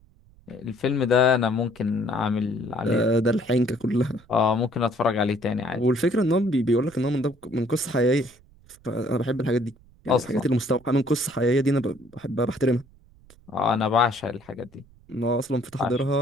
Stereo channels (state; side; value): noise; right; rumble, 27 dB below the sound